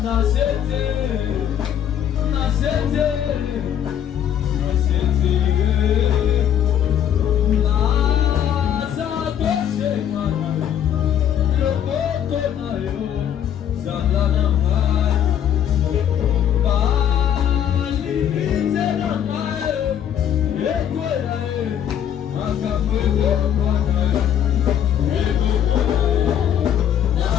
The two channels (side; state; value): right; quieter; 9.7 dB